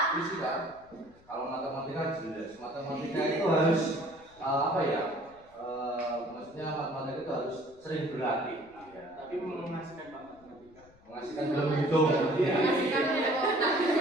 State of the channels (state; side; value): noise; left; rumble, 27 dB below the sound